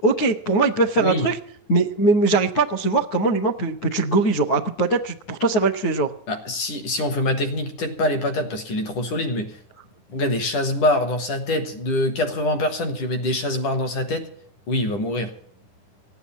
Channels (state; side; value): late; right; 10 ms